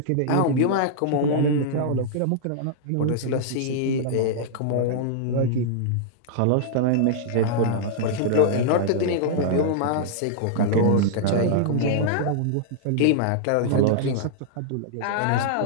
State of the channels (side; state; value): both; different; correlation -0.01